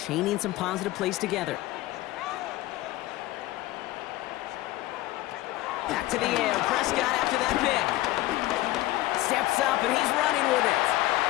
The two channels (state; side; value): quieter; right; 17.2 dB